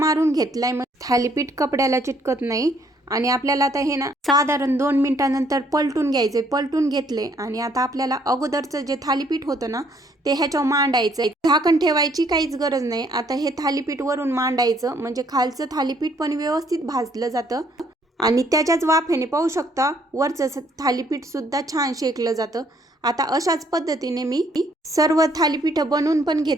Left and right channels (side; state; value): both; normal; correlation 0.66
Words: घेतलाय मग थालीपीठ कपड्याला चिटकत नाही आणि आपल्याला आता हे ना साधारण 2 मिनिटांनंतर पलटून घ्यायचे। पलटून घेतले आणि आता आपल्याला अगोदरचं जे थालीपीठ होतं ना ते ह्याच्यावर मांडायचं, झाकण ठेवायची काहीच गरज नाही। आता हे थालीपीठ वरून मांडायचं म्हणजे खालचं थालीपीठ पण व्यवस्थित भाजलं जातं आणि त्याच्याच वाफेने पाहू शकता वरचं थालीपीठ सुद्धा छान शेकलं जातं। आता अशाच पद्धतीने मी सर्व थालीपीठ बनवून पण